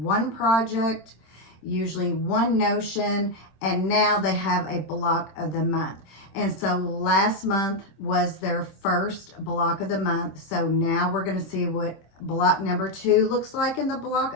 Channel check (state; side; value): late; right; 26 ms